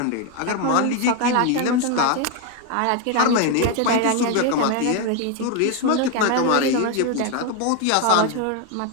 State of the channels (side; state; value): both; different; correlation 0.01